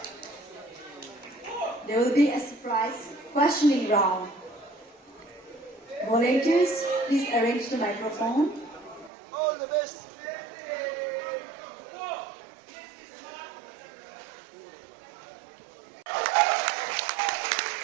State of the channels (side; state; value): left; drops out; at 9.1 s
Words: There will be a surprise questioning round. Volunteers, please arrange the microphone. All the best.